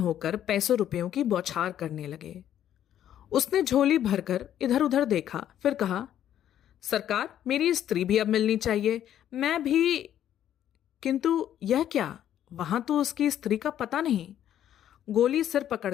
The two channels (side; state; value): right; quieter; 10.9 dB